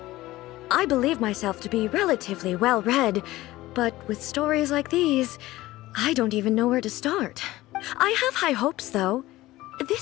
I believe myself to be relatively well-read, but with stories like these, I don't even know where to start. I have high hopes, though.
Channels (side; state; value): right; quieter; 17.3 dB